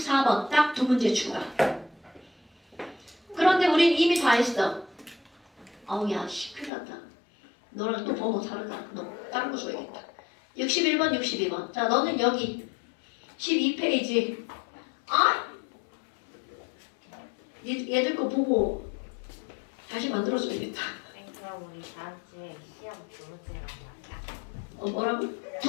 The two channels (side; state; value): right; drops out; at 6.7 s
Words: 딱 두 문제 추가. 그런데 우린 이미 다 했어. 아우, 야, 큰일 났다. 너랑 또 번호 다르다. 너 다른 거 줘야겠다. 61번, 62번. 자, 너는 여기 12페이지. 얘들 거 보고 다시 만들어줘야겠다. 그럼 우리 다음 주에 시험 두 문제란 말이야. 뭐라고?